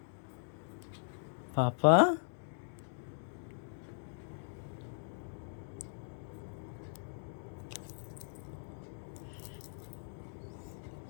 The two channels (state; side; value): silent; right; digital silence